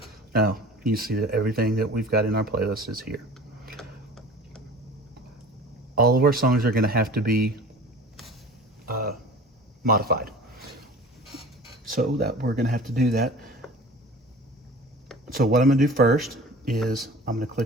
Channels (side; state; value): both; normal; correlation 0.41